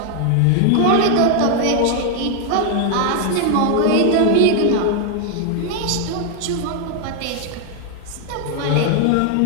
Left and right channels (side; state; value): both; different; correlation 0.00